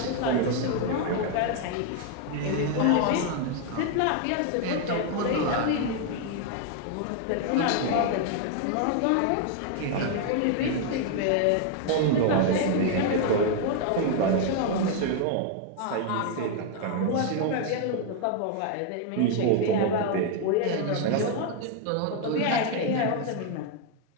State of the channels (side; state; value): both; different; correlation 0.00